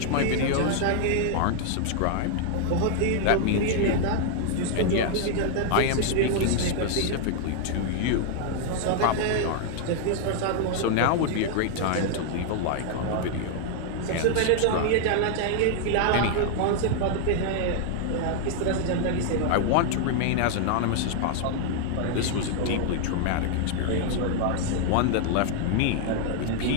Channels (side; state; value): both; different; correlation 0.00